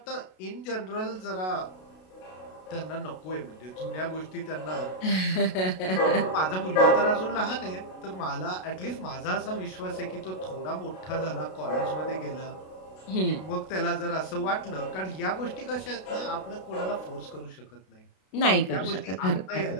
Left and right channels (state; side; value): late; right; 32 ms